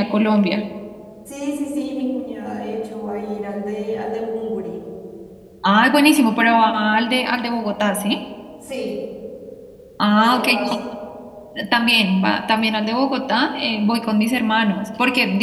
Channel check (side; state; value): both; identical; correlation 1.00